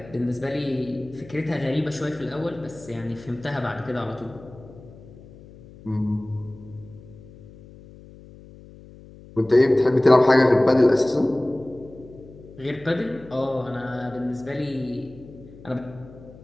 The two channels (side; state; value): left; noise; hum, 20 dB below the sound